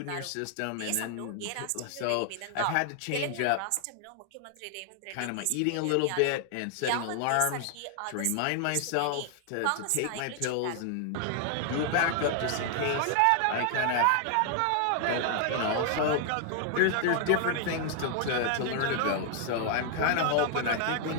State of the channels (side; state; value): both; different; correlation 0.00